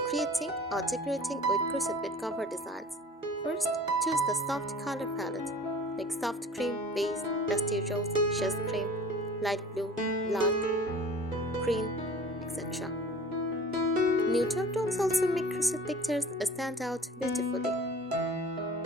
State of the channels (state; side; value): normal; both; correlation 0.44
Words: creating or decorating with crochet bed cover designs. First, choose the soft color palette like soft cream, beige, dusty rose, chess cream, light blue, black, green, etc. Neutral tones also make crochet textures stand out beautifully.